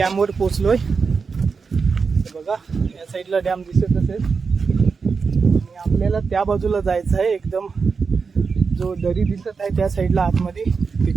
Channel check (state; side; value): quieter; left; 5.1 dB